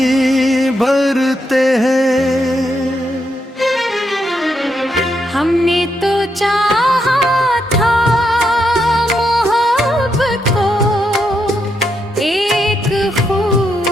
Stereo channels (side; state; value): both; normal; correlation 0.81